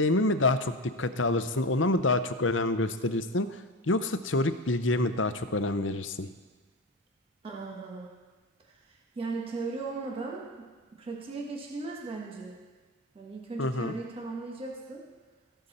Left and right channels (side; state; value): both; normal; correlation 0.23